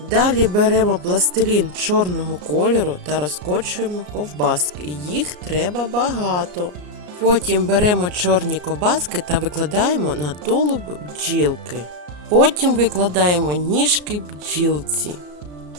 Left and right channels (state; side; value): late; left; 34 ms